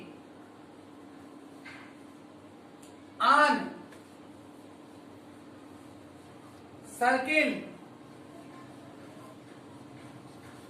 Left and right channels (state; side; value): identical; both; correlation 1.00